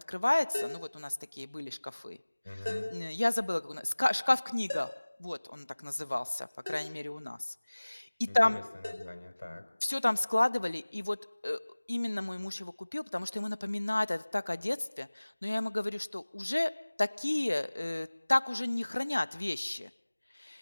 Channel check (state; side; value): inverted; both; correlation -1.00